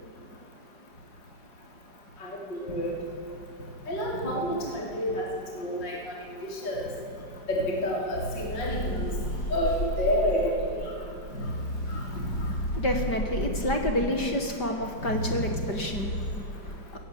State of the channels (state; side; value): late; right; 5.0 ms